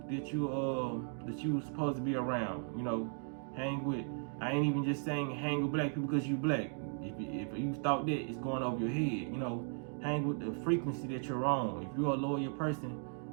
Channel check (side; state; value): left; silent; 53 dB below the other